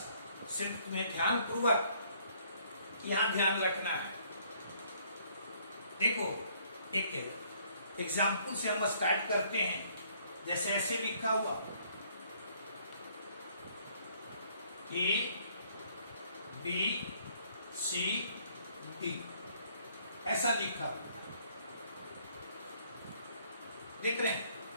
सिर्फ तुम्हें ध्यानपूर्वक यहां ध्यान रखना है। देखो, एक एग्जाम्पल से हम स्टार्ट करते हैं। जैसे ऐसे लिखा हुआ A B C D, ऐसा लिखा हुआ देख रहे हैं।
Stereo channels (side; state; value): both; inverted; correlation -0.64